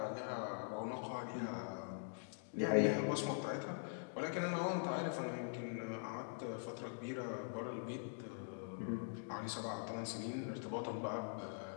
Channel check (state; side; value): silent; right; digital silence